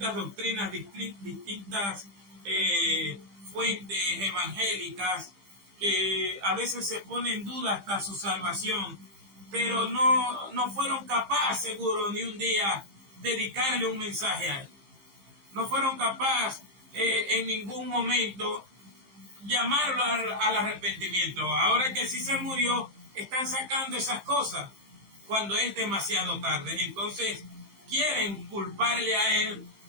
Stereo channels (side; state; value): left; late; 15 ms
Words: doctrinas, distintas fuentes evangélicas, que a veces se pone en duda hasta su salvación, pero no fueron capaces, seguro, ni un día dedicarle un mensaje a él. No fueron capaces en ningún momento llamarlo al arrepentimiento. Ahora que sí se murió, están sacando esas cosas cuando es demasiado tarde. Entonces quieren culparle a él,